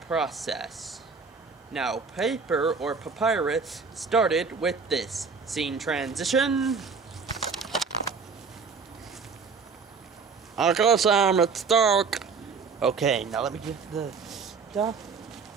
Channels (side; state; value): left; quieter; 5.1 dB